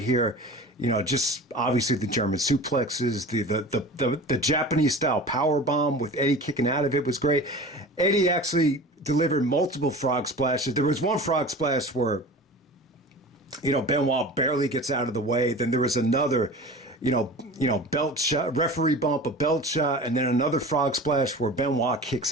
here. Just obviously the German suplexes, the Japanese style power bomb with Eddie kicking out of it was great. Eddie actually delivered multiple frog splashes. There was one frog splash where, Benoit barely gets out of the way. Then there was another belt shot, referee bump, a belt shot, and then another frog splash where Benoit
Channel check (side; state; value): both; normal; correlation 0.37